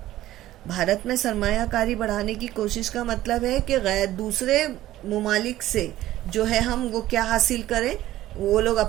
بھارت میں سرمایہ کاری بڑھانے کی کوشش کا مطلب ہے کہ دوسرے ممالک سے جو ہے ہم وہ کیا حاصل کریں، وہ لوگ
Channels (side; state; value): left; quieter; 14.7 dB